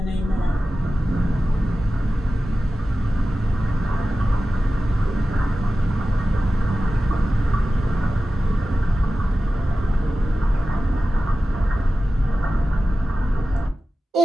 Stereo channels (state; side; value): normal; both; correlation 0.95